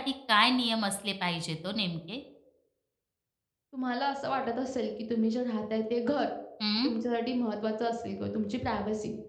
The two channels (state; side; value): identical; both; correlation 1.00